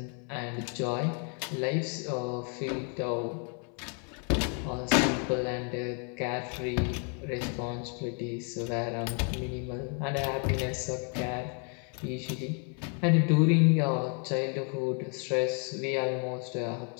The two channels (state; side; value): quieter; right; 39.4 dB